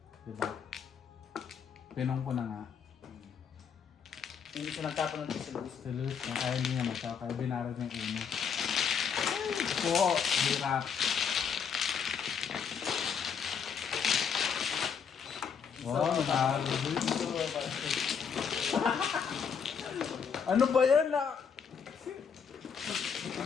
Diba? Pinong ko na nga. Hindi siya nagtapon ng si Luis. Si Luis na kaya hindi niya matsaw. Kaya binarag niya yung 1. Po! Hirap. Wow, natalo Luis. Ano ba yan na?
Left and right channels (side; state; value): right; quieter; 6.8 dB